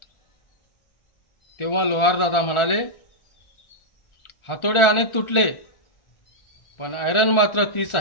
तेव्हा लोहार दादा म्हणाले, हातोडे अनेक तुटले पण आयरन मात्र तीच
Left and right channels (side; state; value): right; late; 1.4 ms